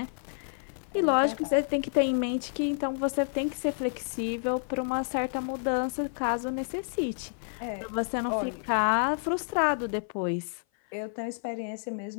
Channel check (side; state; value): right; silent; 56 dB below the other